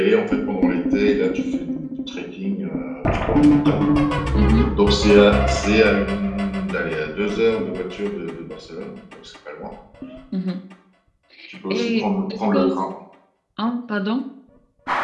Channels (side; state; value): both; identical; correlation 1.00